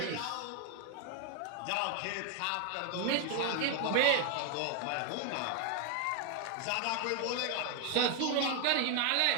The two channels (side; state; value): both; different; correlation 0.01